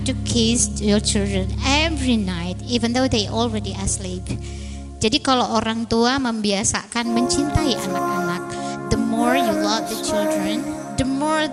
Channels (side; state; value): both; identical; correlation 1.00